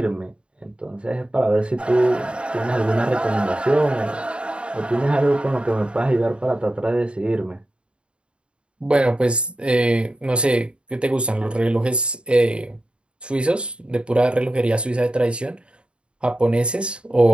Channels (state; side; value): late; left; 0.055 ms